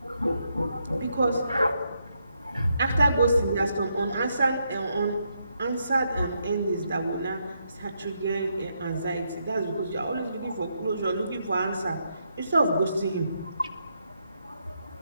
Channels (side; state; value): both; inverted; correlation -0.79